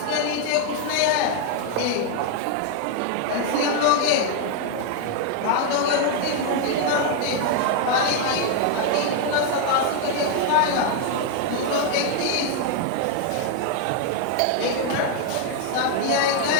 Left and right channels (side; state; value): both; different; correlation 0.00